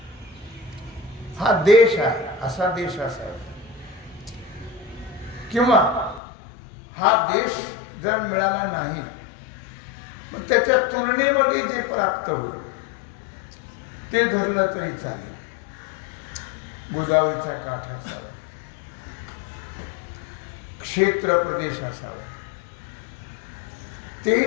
हा देश आहे, असा देश असावा. किंवा हा देश जर मिळाला नाही मग त्याच्या तुलनेमध्ये जे प्राप्त होईल ते धरलं तरी चालेल. गोदावरीचा काठ असावा, क्षेत्र प्रदेश असावा,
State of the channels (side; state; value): right; drops out; at 6.2 s